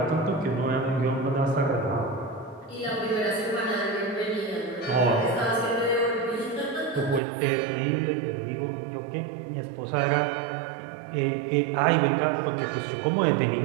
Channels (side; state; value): left; drops out; at 7.2 s